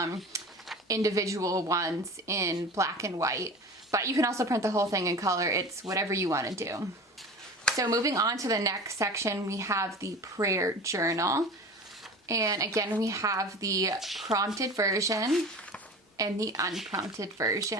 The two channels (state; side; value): normal; both; correlation 0.35